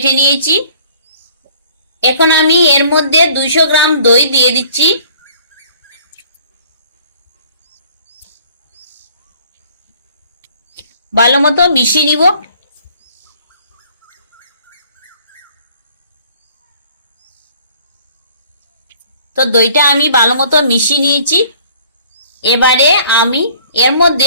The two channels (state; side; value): inverted; both; correlation -0.54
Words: নিয়েছি। এখন আমি এর মধ্যে 200 গ্রাম দই দিয়ে দিচ্ছি। ভালো মতো মিশিয়ে নিব। তো দইটা আমি ভালো মতো মিশিয়ে নিয়েছি। এবারে আমি এর